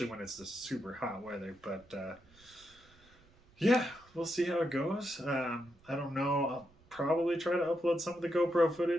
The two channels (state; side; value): noise; right; rumble, 28 dB below the sound